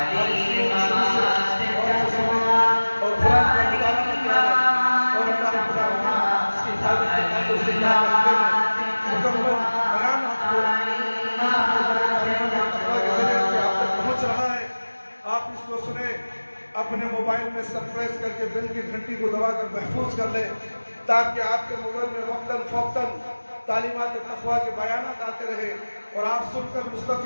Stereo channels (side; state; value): both; inverted; correlation -1.00